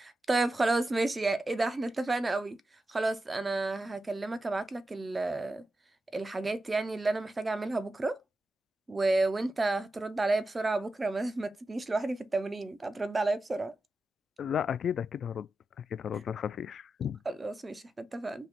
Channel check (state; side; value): normal; both; correlation 0.90